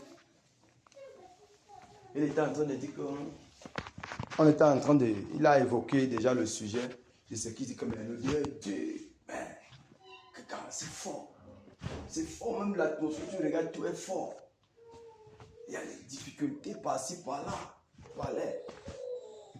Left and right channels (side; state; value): both; identical; correlation 1.00